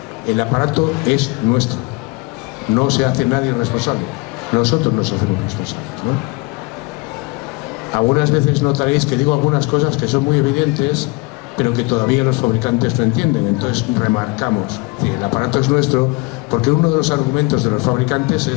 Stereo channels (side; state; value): right; quieter; 26.0 dB